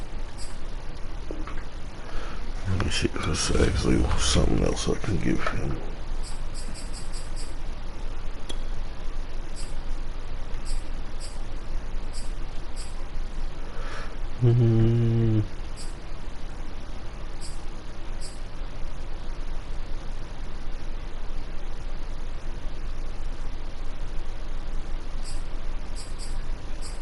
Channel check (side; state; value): both; identical; correlation 1.00